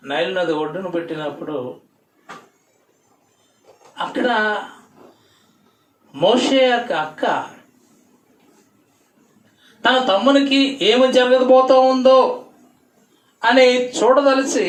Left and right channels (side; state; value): both; identical; correlation 1.00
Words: నైల్ నది ఒడ్డును పెట్టినప్పుడు అక్కడ మోషే యొక్క అక్క తన తమ్మునికి ఏమి జరగబోతూ ఉందో అని చూడదలిచి,